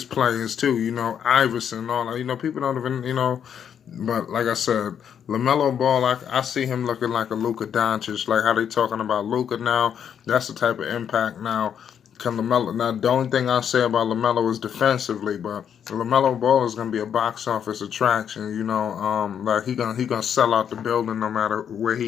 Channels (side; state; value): right; quieter; 8.4 dB